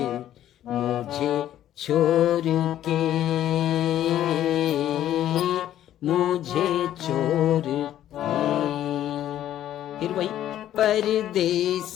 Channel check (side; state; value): right; quieter; 11.9 dB